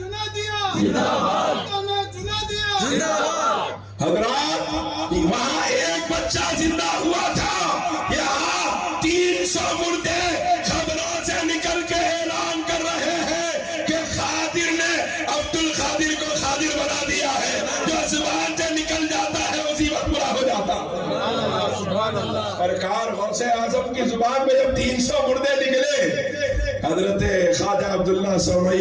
حضرات وہاں ایک بچہ زندہ ہوا تھا، یہاں 300 مردے قبروں سے نکل کے اعلان کر رہے ہیں کہ قادر نے عبد القادر کو قادر بنا دیا ہے. جو زبان سے نکل جاتا ہے اسی وقت پورا ہو جاتا. سرکار غوث اعظم کی زبان میں جب 300 مردے نکلے، حضرت خواجہ عبداللہ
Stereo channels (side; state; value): both; identical; correlation 1.00